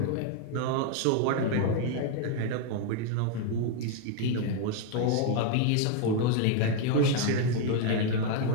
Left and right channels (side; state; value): both; different; correlation 0.01